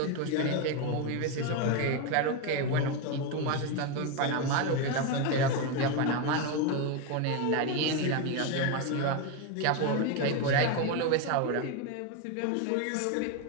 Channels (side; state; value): both; different; correlation 0.03